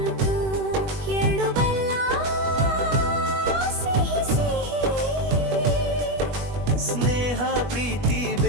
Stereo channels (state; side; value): late; left; 21 ms